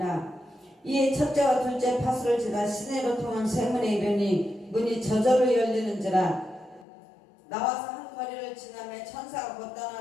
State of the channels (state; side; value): drops out; right; at 6.9 s